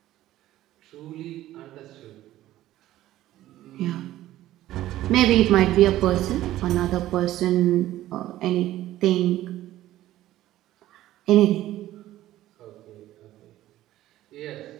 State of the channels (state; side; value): quieter; left; 14.5 dB